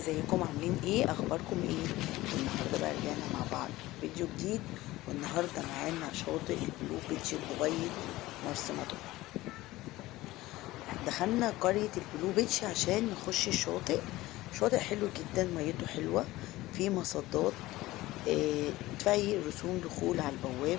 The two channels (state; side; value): quieter; right; 17.9 dB